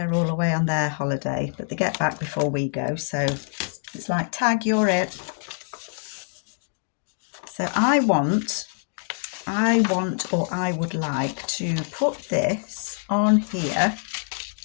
all away on their holiday, but they get back before we go. So it's like, tag, you're it. So I would like to put this on here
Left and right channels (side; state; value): right; silent; digital silence